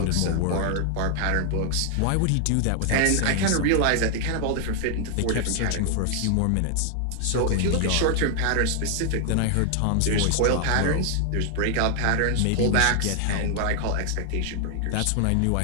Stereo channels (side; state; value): both; different; correlation 0.00